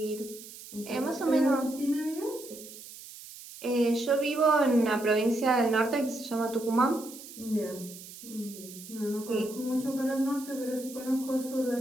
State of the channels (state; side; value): noise; right; hiss, 15 dB below the sound